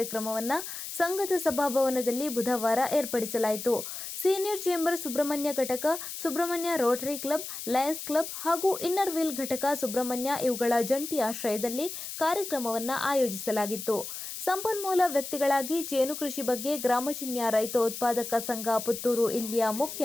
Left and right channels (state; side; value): noise; left; hiss, 8 dB below the sound